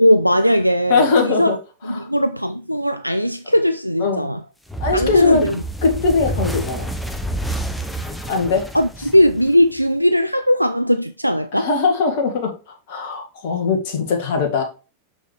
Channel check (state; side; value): inverted; both; correlation -0.74